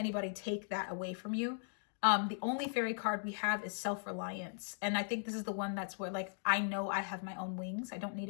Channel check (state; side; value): silent; right; digital silence